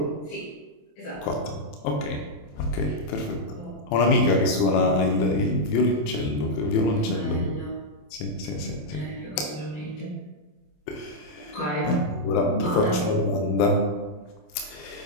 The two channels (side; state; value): right; late; 27 ms